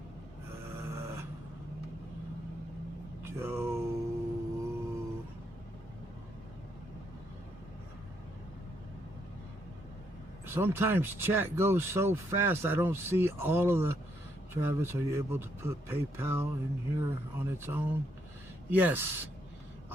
Joe. Sometimes chat goes so fast I don't see all of the. Travis, are you able to put PayPal in here on its own? Yes.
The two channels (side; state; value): both; normal; correlation 0.75